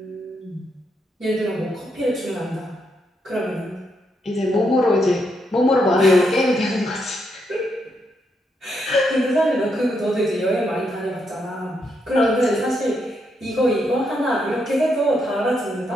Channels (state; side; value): normal; both; correlation 0.79